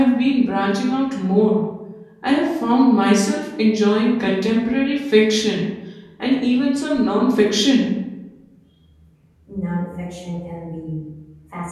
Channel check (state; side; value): identical; both; correlation 1.00